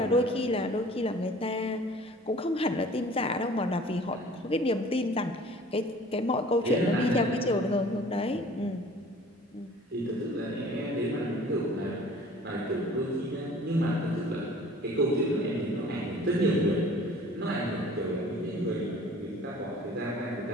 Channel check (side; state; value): both; normal; correlation 0.48